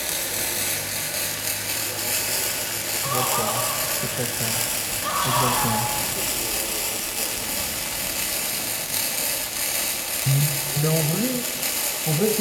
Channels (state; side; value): identical; both; correlation 1.00